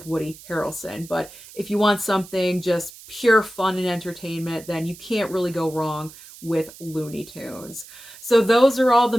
Woody Harrelson. But if you want something just pure fun and entertainment, then you can't really go wrong with Looney Tunes. So those are all the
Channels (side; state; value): right; noise; hiss, 19 dB below the sound